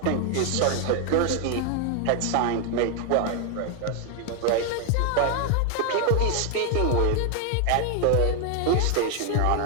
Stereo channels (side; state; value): both; different; correlation 0.00